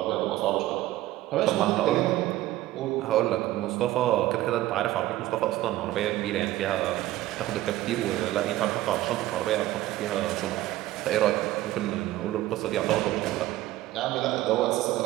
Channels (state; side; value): quieter; left; 15.5 dB